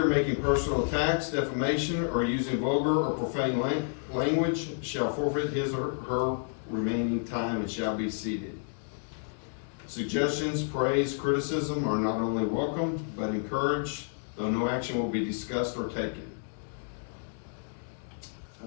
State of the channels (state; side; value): silent; right; digital silence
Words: making personal attacks, defamation, or using vulgar or profane language shall forfeit his or her remaining time and shall be seated. Suggestions, praise, criticism are not only welcome, but encouraged, though no action will be discussed or taken.